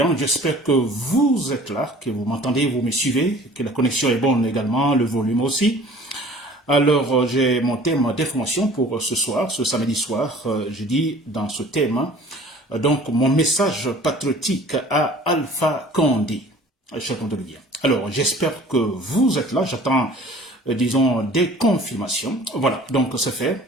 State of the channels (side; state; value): both; normal; correlation 0.48